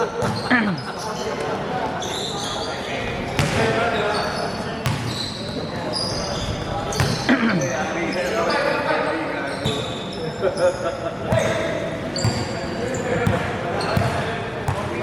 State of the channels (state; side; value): identical; both; correlation 1.00